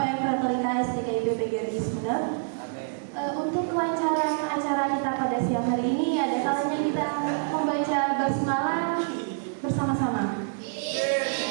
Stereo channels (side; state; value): left; silent; digital silence